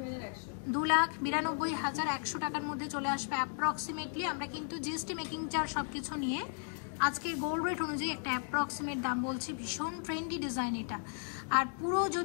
2,92,100 টাকার মধ্যে চলে আসবে অ্যাপ্রক্সিমেটলি। আমরা কিন্তু জিএসটি মেকিং চার্জ সবকিছু নিয়ে আজকের গোল্ড রেট অনুযায়ী একটা অ্যাপ্রক্সিমেট দাম বলছি। ভীষণ ট্রেন্ডি ডিজাইন এটা। আর পুরো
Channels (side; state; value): right; silent; 54 dB below the other